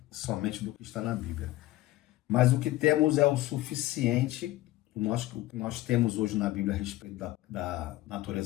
Somente do que está na Bíblia. Mas o que temos é o suficiente. O que nós temos hoje na Bíblia a respeito da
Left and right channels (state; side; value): quieter; right; 16.6 dB